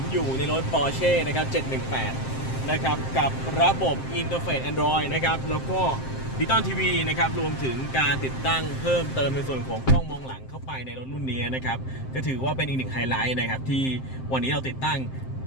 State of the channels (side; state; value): right; late; 7.6 ms